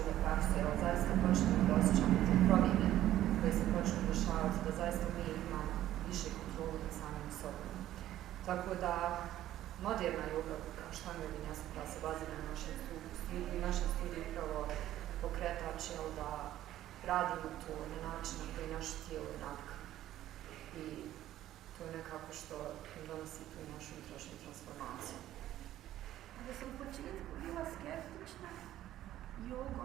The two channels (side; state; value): left; quieter; 13.2 dB